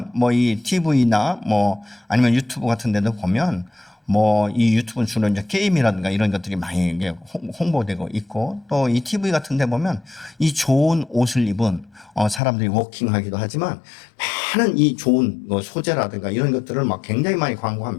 이 TV나 아니면 유튜브 같은 데도 보면 이 유튜브는 주로 이제 게임이라든가 이런 것들이 많이 홍보되고 있고, 또 이 TV 같은 데 보면 이 좋은 옷을 입은 사람들이 워킹하기도 하지만 많은 이 좋은 소재라든가 이런 것들을 굉장히 많이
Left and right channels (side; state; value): right; drops out; at 12.4 s